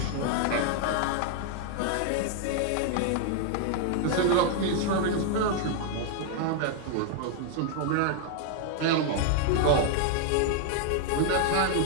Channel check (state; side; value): different; both; correlation 0.00